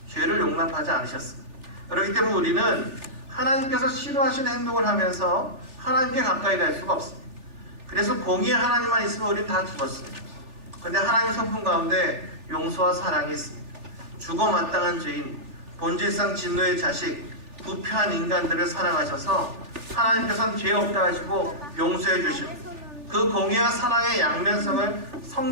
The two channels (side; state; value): left; late; 3.4 ms